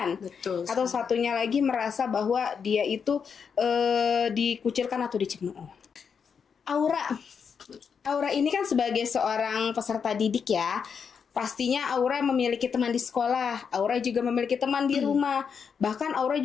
Betul. Atau satunya lagi merasa bahwa dia itu dikucilkan atau dicemooh. Aura ini kan sebagai seorang peserta didik ya. Pastinya Aura memiliki teman di sekolah, Aura juga memiliki teman di rumah, bahkan Aura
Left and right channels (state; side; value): quieter; right; 6.5 dB